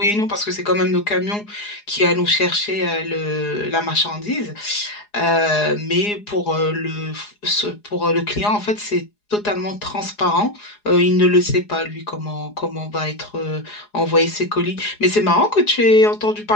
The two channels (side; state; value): right; late; 4.8 ms